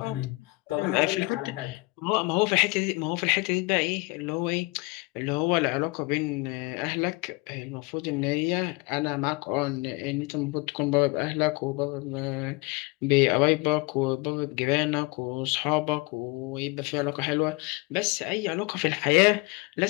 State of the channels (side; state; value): right; quieter; 25.3 dB